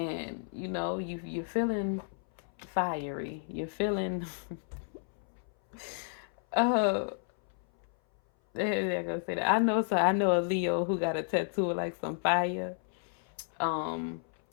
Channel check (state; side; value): silent; right; 56 dB below the other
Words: you're feeling fiery. You're feeling They're gonna say that. I know. So I know a Leo who got a tattoo of like some fire, um,